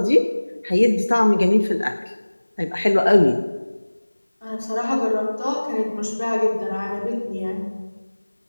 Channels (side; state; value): both; inverted; correlation -1.00